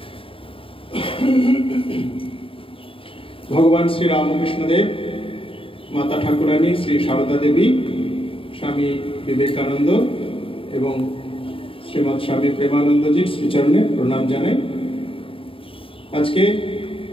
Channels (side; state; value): right; late; 0.26 ms